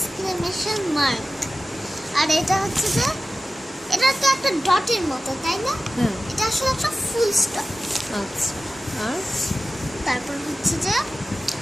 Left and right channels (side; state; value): both; normal; correlation 0.95